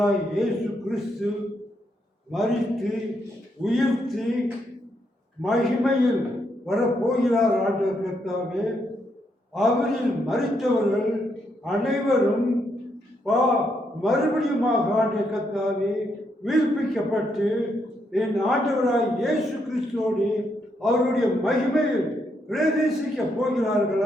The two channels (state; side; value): normal; both; correlation 0.77